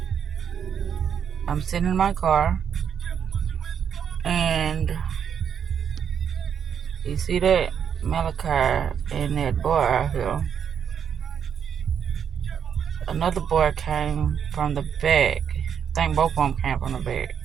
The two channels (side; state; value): left; quieter; 7.9 dB